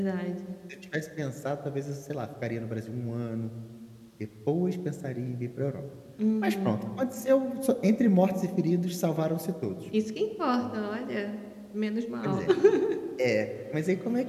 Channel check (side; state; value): both; identical; correlation 1.00